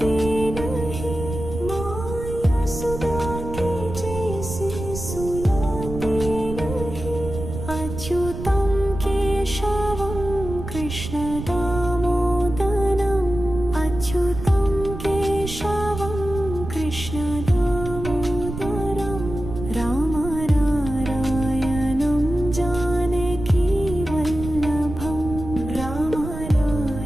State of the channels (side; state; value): right; noise; rumble, 8 dB below the sound